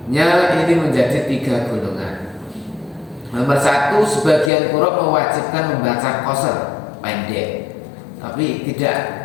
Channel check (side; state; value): right; drops out; at 4.5 s